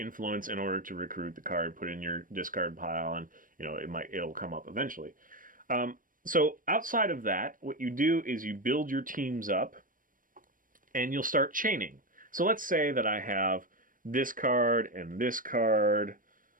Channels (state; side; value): late; left; 0.40 ms